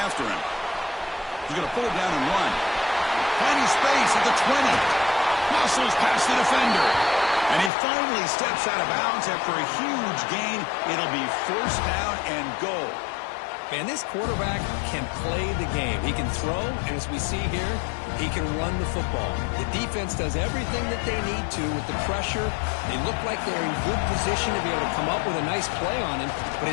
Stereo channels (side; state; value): right; drops out; at 7.7 s